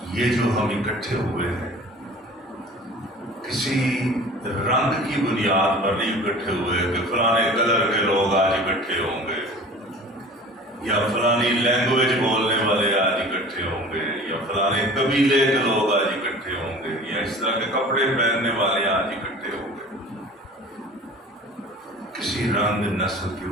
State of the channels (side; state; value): both; normal; correlation 0.42